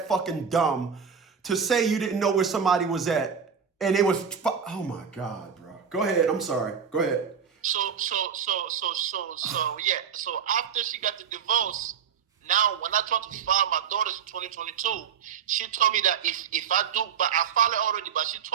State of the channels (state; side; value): quieter; left; 7.1 dB